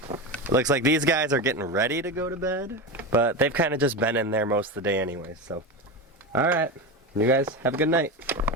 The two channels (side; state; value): both; normal; correlation 0.20